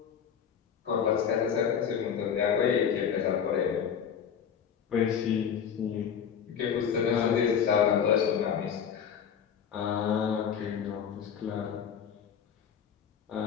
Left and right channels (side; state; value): right; quieter; 7.8 dB